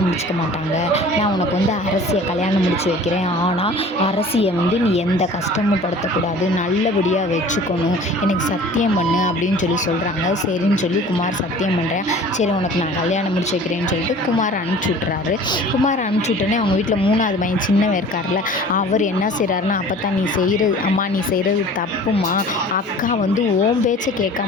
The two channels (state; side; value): normal; both; correlation 0.45